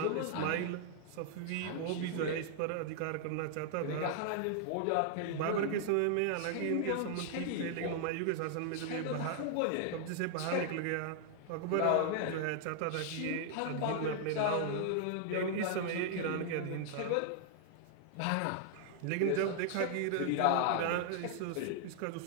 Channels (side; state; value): both; different; correlation 0.00